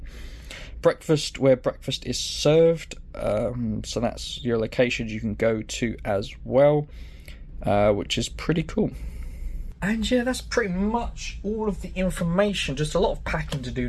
Breakfast, where breakfast is served, so that's your locations you can go to as well, which is pretty cool. And yeah, that's pretty much all of the information. Just a lot of packing to do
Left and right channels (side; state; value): both; identical; correlation 1.00